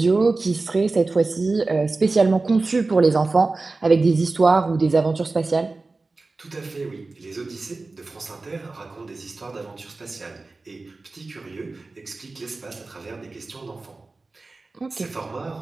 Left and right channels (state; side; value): quieter; left; 3.5 dB